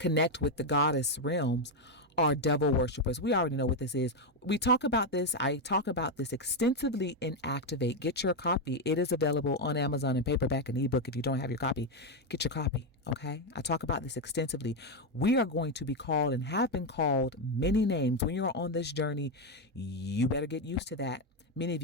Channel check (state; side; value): normal; both; correlation 0.05